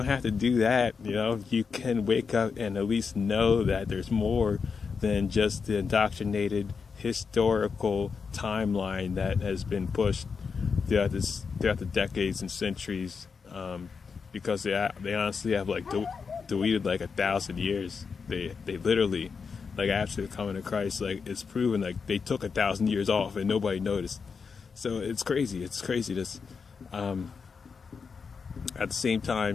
have to do that. You can wake up and at least know that there's more than just the indoctrinated historical timeline that has been pushed throughout the decades and centuries, because they honestly have like deleted like 1,000 years. They literally, like after the coming of Christ, like it's proven like they took 1,000 years off and nobody noticed. So it's crazy. This at the same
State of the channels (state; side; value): quieter; right; 5.5 dB